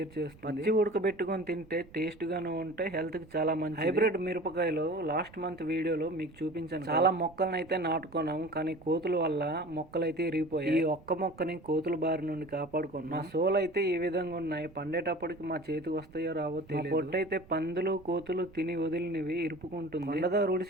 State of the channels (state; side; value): noise; right; rumble, 23 dB below the sound